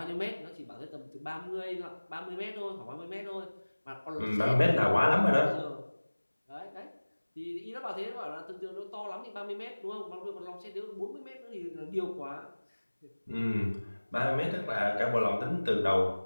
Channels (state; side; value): inverted; both; correlation -1.00